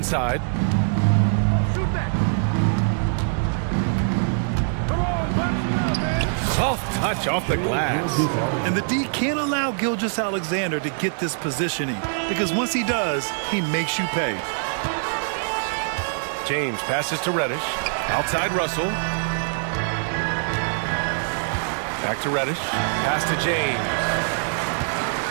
Soft touch off the glass. And the D can't allow Gilgeous-Alexander to get this positioning, because once he does, he makes you pay. James passes to Reddish. Outside Russell. Back to Reddish. Pass to James.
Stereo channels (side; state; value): left; silent; digital silence